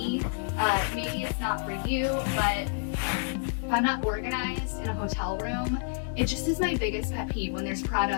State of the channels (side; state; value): right; silent; digital silence